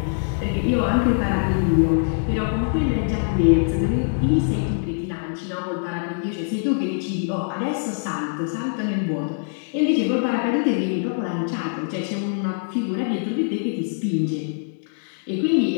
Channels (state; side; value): silent; right; digital silence